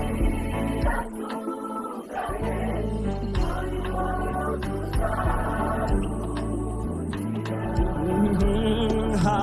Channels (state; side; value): identical; both; correlation 1.00